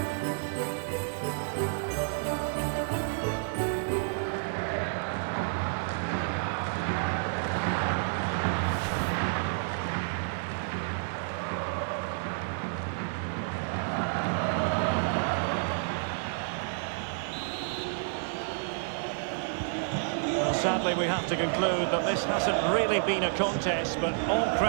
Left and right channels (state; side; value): silent; left; digital silence